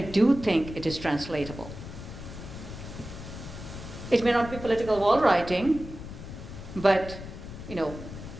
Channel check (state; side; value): noise; left; rumble, 11 dB below the sound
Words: think it is translatable. It may not be political wall writing, but, you know,